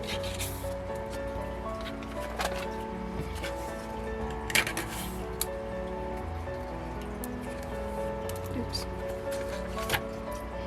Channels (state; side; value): identical; both; correlation 1.00